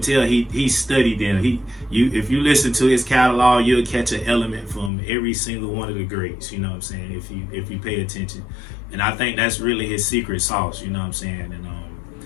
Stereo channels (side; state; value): right; drops out; at 4.9 s